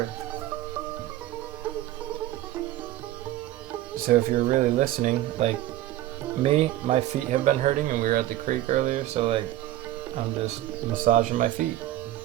So if you're really listening, like me, my feet have been hurting and we were at the creek earlier, so like I'm just massaging my feet.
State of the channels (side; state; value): left; quieter; 14.6 dB